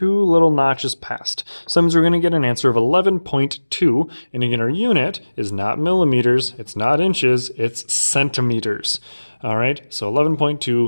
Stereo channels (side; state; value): both; inverted; correlation -1.00